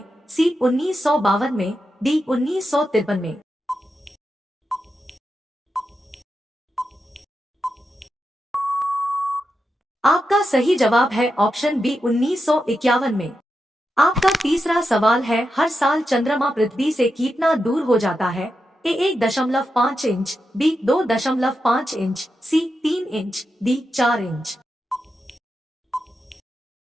सी, 1952 में। डी, 1953 में। आपका सही जवाब है ऑप्शन बी, 1951 में। आपका तीसरा सवाल है, हर साल चंद्रमा पृथ्वी से कितना दूर हो जाता है? A, 1.5 inch. B, 2.5 inch. C, 3 inch. D, 4 inch.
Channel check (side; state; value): both; normal; correlation 0.88